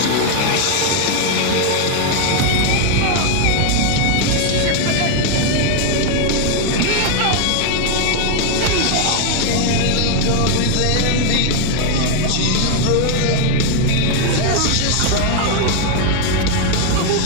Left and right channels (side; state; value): both; different; correlation 0.01